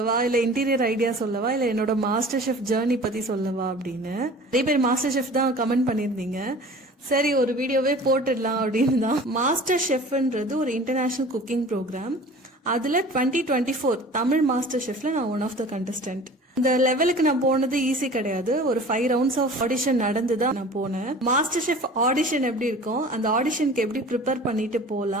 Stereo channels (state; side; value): normal; both; correlation 0.43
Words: இல்ல இன்டீரியர் ஐடியா சொல்லவா, இல்ல என்னோட மாஸ்டர் ஷெஃப் ஜேர்னி பத்தி சொல்லவா அப்படின்னு நிறைய பேர் மாஸ்டர் ஷெஃப் தான் கமெண்ட் பண்ணிருந்தீங்க. சரி, ஒரு வீடியோவே போட்டுடலாம் அப்படின்னு தான். மாஸ்டர் ஷெஃப்ன்றது ஒரு இன்டர்நேஷனல் குக்கிங் ப்ரோக்ராம். அதுல 2024 தமிழ் மாஸ்டர் ஷெஃப்ல நான் ஒன் ஆஃப் த கண்டஸ்டன்ட். இந்த லெவலுக்கு நான் போனது ஈஸி கிடையாது. ஒரு 5 ரவுண்ட்ஸ் ஆஃப் ஆடிஷன் நடந்துதான் நான் போனேன். மாஸ்டர் ஷெஃப் ஆடிஷன் எப்படி இருக்கும், அந்த ஆடிஷனுக்கு எப்படி ப்ரிப்பேர் பண்ணிட்டு